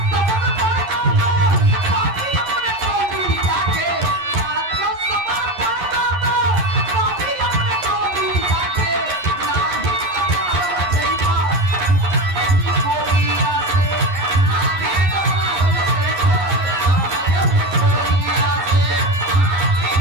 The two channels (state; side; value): late; left; 11 ms